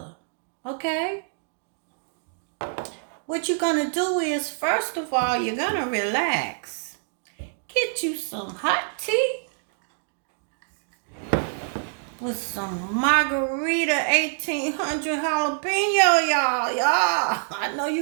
okay? What you're gonna do is, first of all, you're gonna relax. Get you some hot tea with some margarita 1800 jalapeno, y'all. I know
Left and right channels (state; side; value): silent; left; digital silence